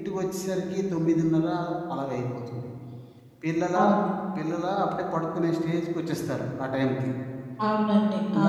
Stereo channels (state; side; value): identical; both; correlation 1.00